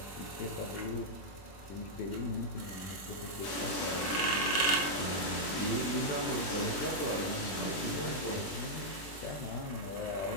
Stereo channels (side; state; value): right; late; 21 ms